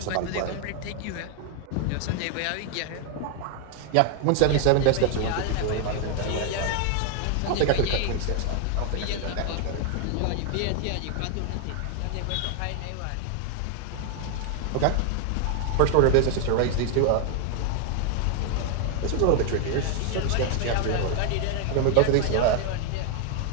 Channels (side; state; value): both; different; correlation 0.00